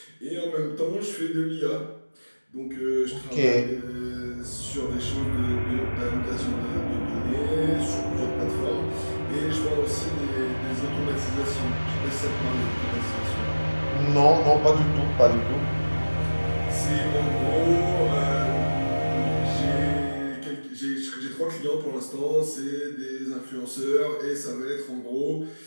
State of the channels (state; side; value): inverted; both; correlation -1.00